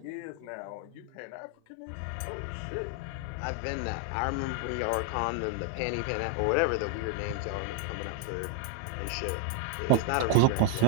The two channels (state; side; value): different; both; correlation 0.00